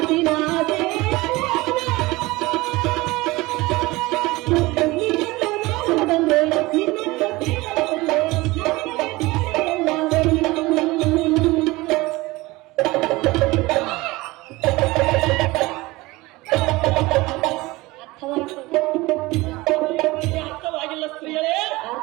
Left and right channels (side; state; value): left; quieter; 21.1 dB